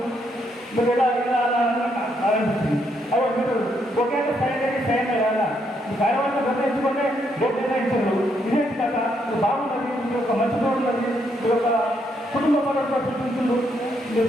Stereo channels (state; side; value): normal; both; correlation 0.75